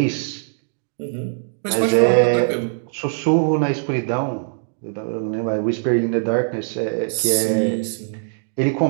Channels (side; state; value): left; silent; digital silence